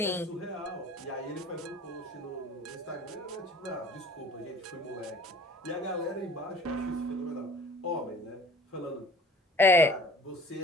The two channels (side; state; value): both; normal; correlation 0.48